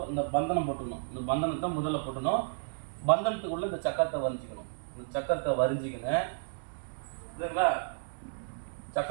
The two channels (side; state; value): left; silent; digital silence